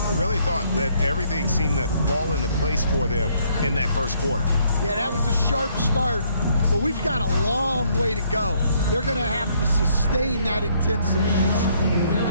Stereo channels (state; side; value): inverted; both; correlation -0.67